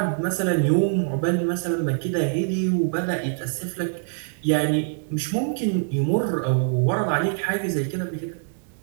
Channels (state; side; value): silent; left; 57 dB below the other